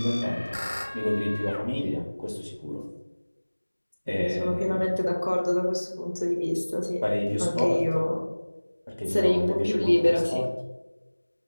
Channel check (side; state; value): both; inverted; correlation -1.00